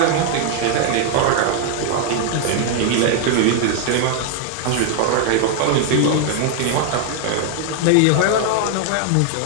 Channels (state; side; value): different; both; correlation 0.00